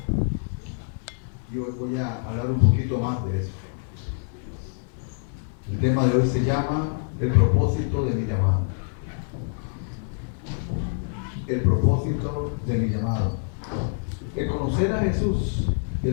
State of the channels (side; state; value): right; silent; 61 dB below the other